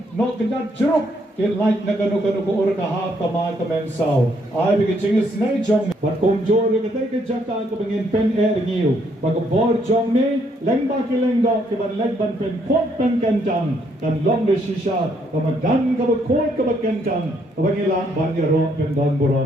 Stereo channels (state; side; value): normal; both; correlation 0.71